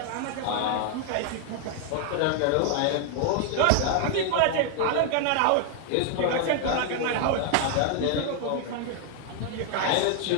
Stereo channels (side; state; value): both; different; correlation 0.00